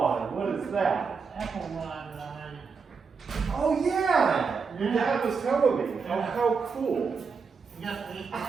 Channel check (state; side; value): quieter; left; 5.3 dB